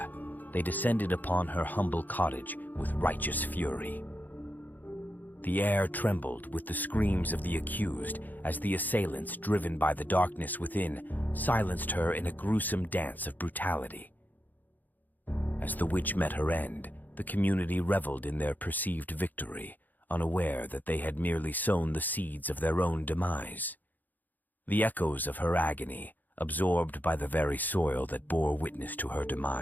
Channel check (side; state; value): right; late; 0.085 ms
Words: they descended upon her humble cottage with righteous fury. The air trembled with the screams of the accused as the assailants, driven by the darkness within, silenced her in a gruesome dance of brutality. As the witch met her end, the community reveled in their perceived victory, unaware that they had merely sown the seeds of their own demise. The echoes of her agony, absorbed by the very soil that bore witness to her